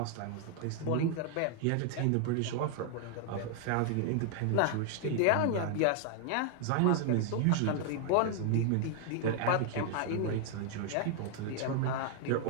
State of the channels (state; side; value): different; both; correlation 0.00